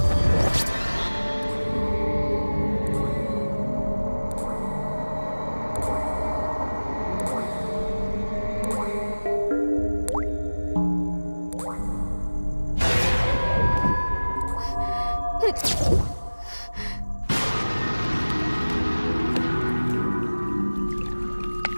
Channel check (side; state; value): both; inverted; correlation -1.00